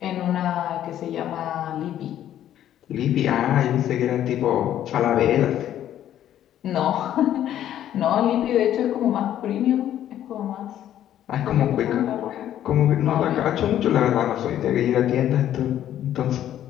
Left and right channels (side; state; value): right; quieter; 11.4 dB